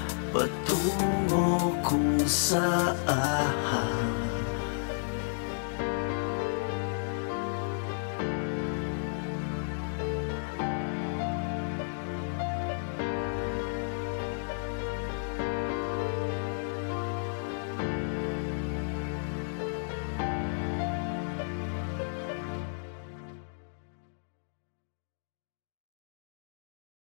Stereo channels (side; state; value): right; silent; digital silence